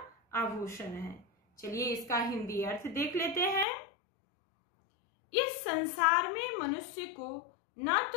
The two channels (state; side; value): drops out; right; at 3.7 s